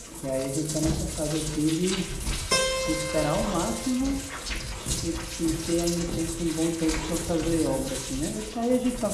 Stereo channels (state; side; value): identical; both; correlation 1.00